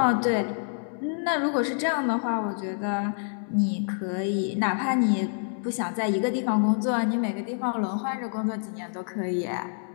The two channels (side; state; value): right; silent; 60 dB below the other